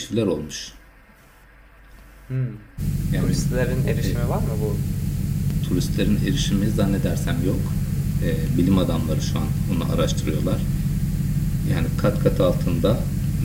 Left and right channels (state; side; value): identical; both; correlation 1.00